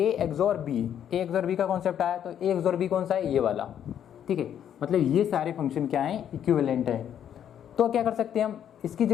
XOR B, A XOR B का कॉन्सेप्ट आया, तो ए एक्सोर बी कौन सा है, ये वाला। ठीक है, मतलब ये सारे फंक्शन क्या हैं, इक्विवेलेंट है। तो क्या कर सकते हैं हम, इसकी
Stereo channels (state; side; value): quieter; right; 9.6 dB